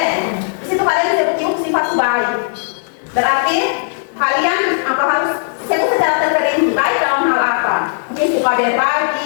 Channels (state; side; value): silent; right; digital silence